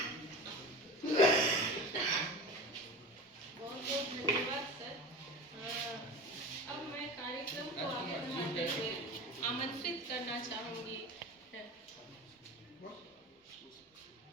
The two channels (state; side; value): normal; both; correlation 0.32